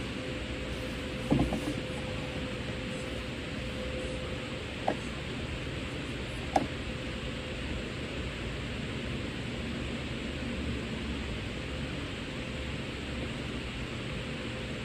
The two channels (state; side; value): identical; both; correlation 1.00